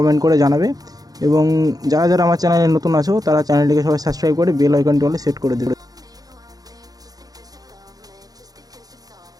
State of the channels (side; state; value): left; late; 0.18 ms